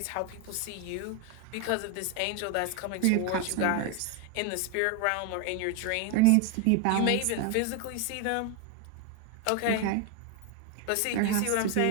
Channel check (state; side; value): different; both; correlation 0.01